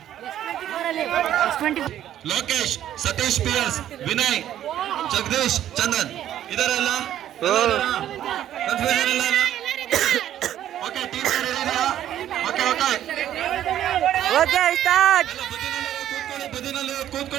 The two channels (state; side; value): quieter; left; 11.6 dB